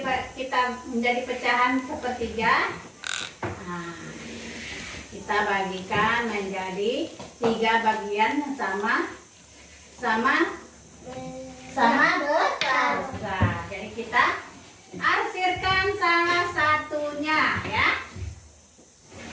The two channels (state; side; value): identical; both; correlation 1.00